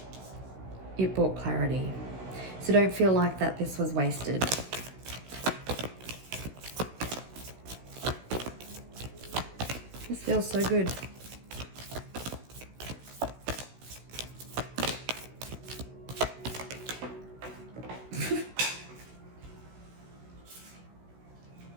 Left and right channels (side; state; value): left; late; 16 ms